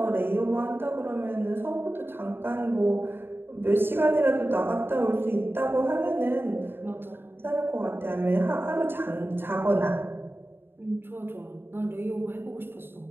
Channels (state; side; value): late; left; 0.10 ms